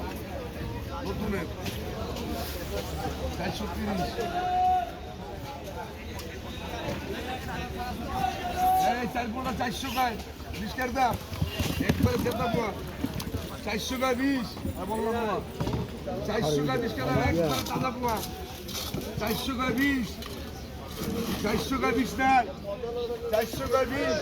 400 গায় 20 টাকা দাম একবারে দেবো 400 গায় 20 বললাম না 400 গায় 20 টাকা একবারে দাদা পোয়া 400 গায় 20 400 গায় 20 না 400 গায় 20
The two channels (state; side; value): identical; both; correlation 1.00